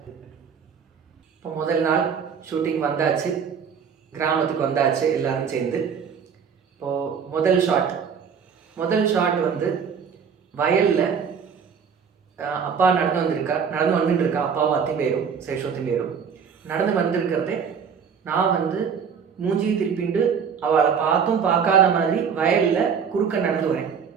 இப்போ முதல் நாள் ஷூட்டிங் வந்தாச்சு, கிராமத்துக்கு வந்தாச்சு எல்லாரும் சேர்ந்து. இப்போது முதல் ஷாட் முதல் ஷாட் வந்து வயலில் அப்பா நடந்து வந்துட்டு இருக்கா, அப்பாவும் அத்தையும் பேரும் சேஷோத்தையும் பேரும் நடந்து வந்திருக்கிறதே நான் வந்து மூஞ்சியை திருப்பிண்டு அவளை பார்த்தும் பார்க்காத மாதிரி வயலில் குறுக்க நடந்து வரேன்.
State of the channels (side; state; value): left; quieter; 6.7 dB